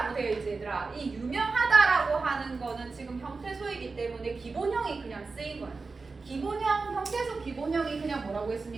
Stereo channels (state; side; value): quieter; left; 4.1 dB